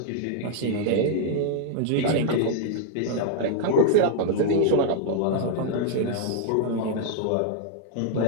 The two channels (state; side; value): different; both; correlation -0.01